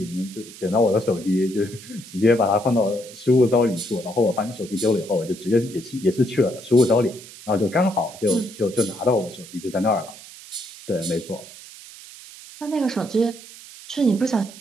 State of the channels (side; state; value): right; noise; hiss, 17 dB below the sound